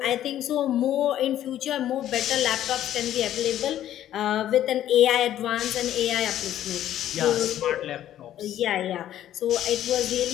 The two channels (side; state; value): right; quieter; 11.9 dB